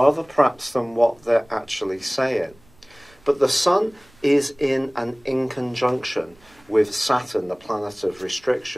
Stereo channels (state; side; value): noise; right; rumble, 29 dB below the sound